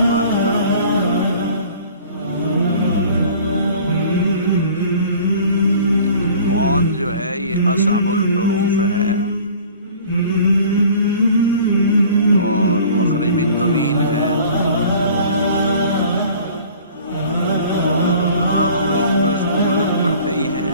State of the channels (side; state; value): both; inverted; correlation -0.48